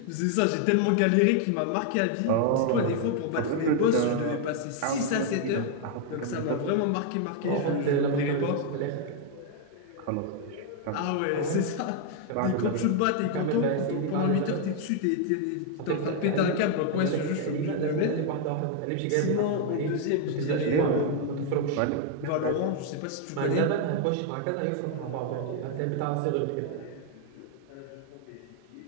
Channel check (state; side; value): different; both; correlation 0.00